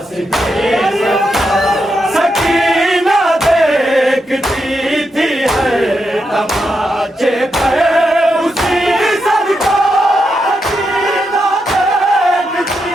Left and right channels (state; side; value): normal; both; correlation 0.84